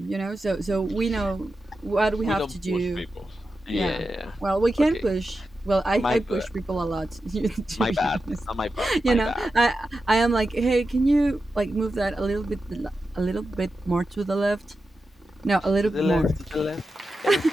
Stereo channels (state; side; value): normal; both; correlation 0.90